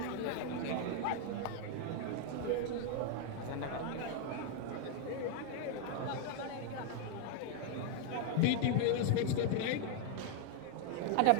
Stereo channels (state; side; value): different; both; correlation 0.00